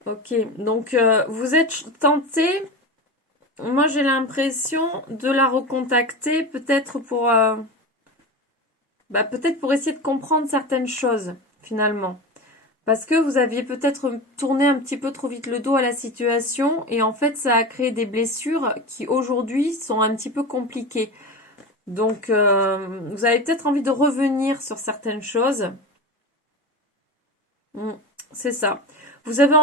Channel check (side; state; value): both; normal; correlation 0.25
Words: Ok, donc vous êtes tenté. Moi, j'ai l'impression de la recontacter, peut-être peut-être pour essayer de comprendre certaines choses, finalement. Parce que vous aviez peut-être tourné un petit peu trop vite le dos à la situation et en fait ça a créé des blessures qui aujourd'hui sont un petit peu compliquées. Donc vous avez peut-être envie de revenir sur certaines choses. C'est ça. Vous avez